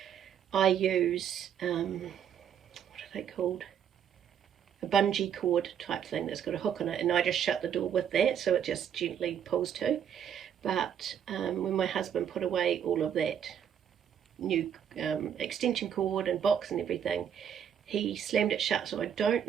I use, what are they called? a bungee cord type thing that's got a hook on it, and I just shut the door with that so it just gently pulls to. But when my husband put away all of that new extension cord and box and everything, he slammed it shut. So I don't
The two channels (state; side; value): quieter; left; 8.8 dB